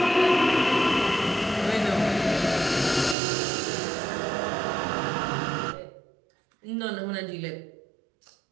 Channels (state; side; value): drops out; left; at 3.2 s